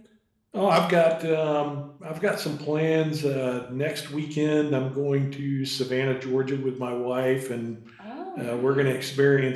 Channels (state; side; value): identical; both; correlation 1.00